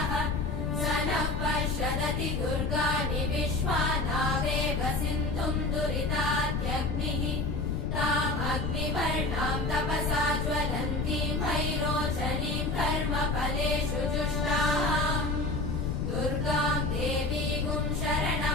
स नः पश्यदति दुर्गाणि विश्वानावेव सिन्धुम् दुरितात्यग्निः तामग्निवर्णाम् तपसा ज्वलन्तीम् भैरोचनीम् कर्मफलेषु जुष्टाम् दुर्गाम् देवीगुम्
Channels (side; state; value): left; noise; rumble, 1 dB below the sound